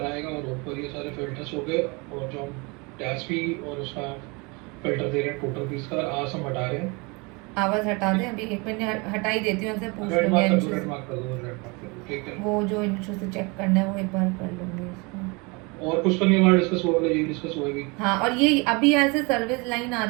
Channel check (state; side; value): quieter; left; 28.5 dB